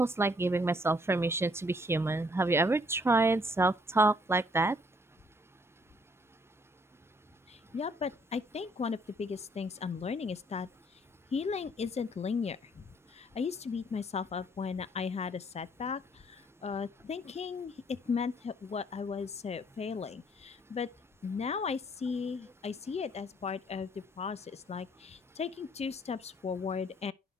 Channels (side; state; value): both; normal; correlation 0.64